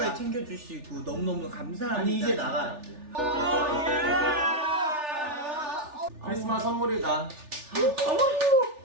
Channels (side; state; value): left; late; 3.4 ms